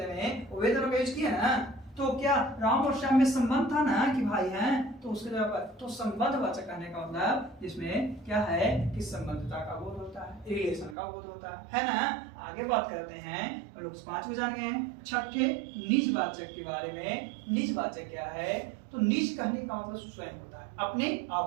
में वे दोनों का यूज किया ना, तो क्या राम और श्याम में संबंध था ना कि भाई हैं, तो उसके जगह पर तो संबंधवाचक कहने का मतलब जिसमें क्या है कि संबंधता का बोध होता है, रिलेशन का बोध होता है ना। आगे बात करते हैं, लोग 5 को जान गए हैं। छठे निजवाचक के बारे में। निजवाचक क्या है? तो निज कहने का मतलब स्वयं होता है, अपने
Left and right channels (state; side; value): drops out; left; at 11.0 s